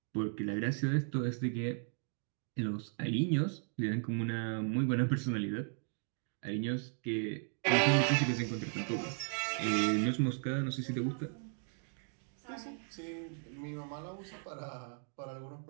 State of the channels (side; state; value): left; silent; 54 dB below the other